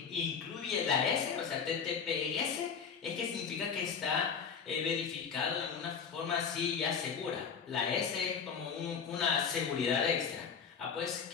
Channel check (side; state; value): right; quieter; 6.4 dB